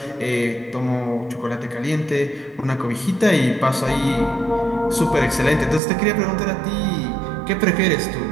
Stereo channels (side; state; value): left; drops out; at 5.8 s